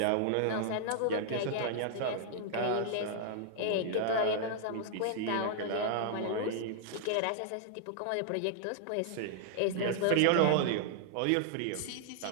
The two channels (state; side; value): different; both; correlation -0.01